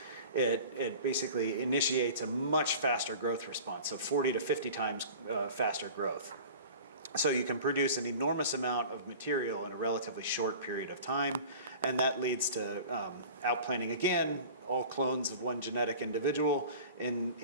it basically initiates a much faster growth response, so 40 to 50 times faster growth. So you can produce an enormous amount of material in a relatively short period of time, and that leads to outplanting again, all clones of one genetic individual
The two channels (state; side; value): inverted; both; correlation -0.40